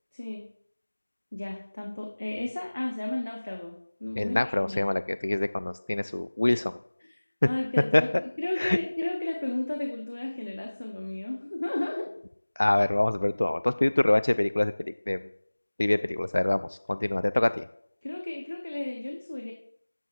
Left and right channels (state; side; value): inverted; both; correlation -1.00